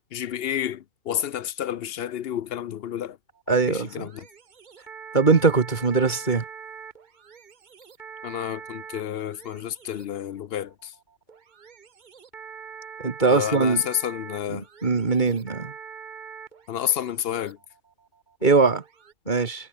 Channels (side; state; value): right; late; 2.8 ms